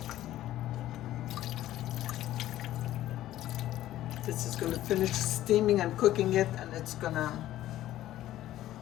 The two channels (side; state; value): right; quieter; 13.9 dB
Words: This is going to finish steaming and cooking it, and it's going to